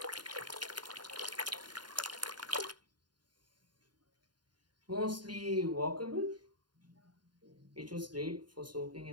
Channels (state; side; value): late; left; 0.71 ms